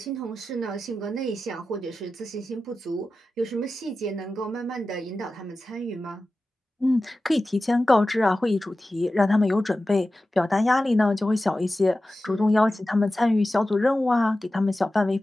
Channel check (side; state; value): both; normal; correlation 0.94